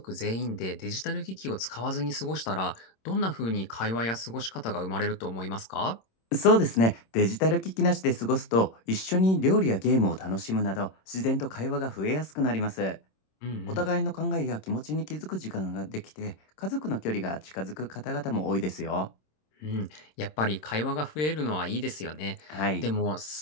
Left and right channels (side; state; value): right; late; 26 ms